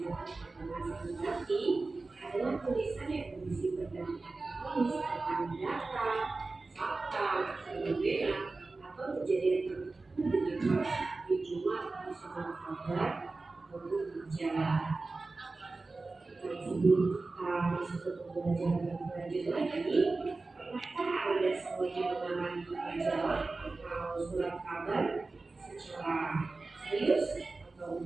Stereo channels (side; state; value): left; quieter; 3.6 dB